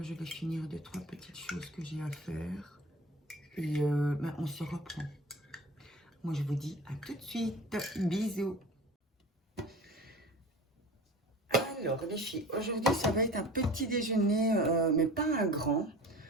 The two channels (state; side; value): normal; both; correlation 0.39